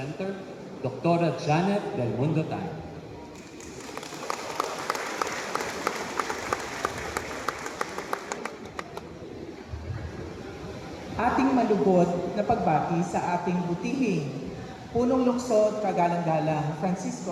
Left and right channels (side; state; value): both; identical; correlation 1.00